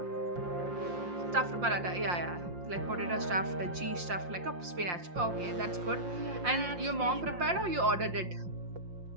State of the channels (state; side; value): late; left; 5.7 ms